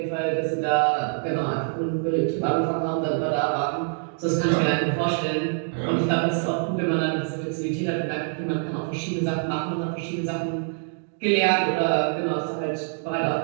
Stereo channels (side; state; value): left; silent; 56 dB below the other